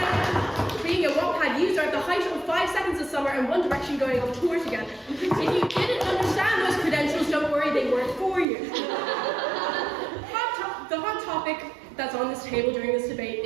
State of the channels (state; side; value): drops out; left; at 8.5 s